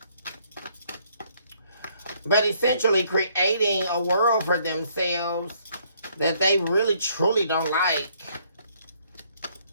but essentially creating a world for themselves that they really truly don't like.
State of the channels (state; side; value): inverted; both; correlation -0.66